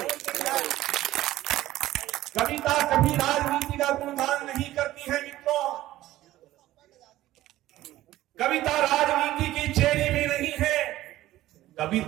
कविता कभी राजनीति का गुणगान नहीं करती है मित्रों, कविता राजनीति की चेरी भी नहीं है,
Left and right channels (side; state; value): left; quieter; 15.3 dB